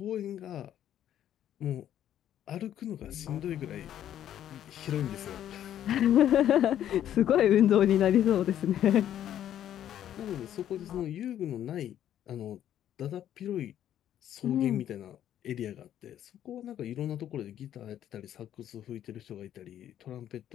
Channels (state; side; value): quieter; right; 11.0 dB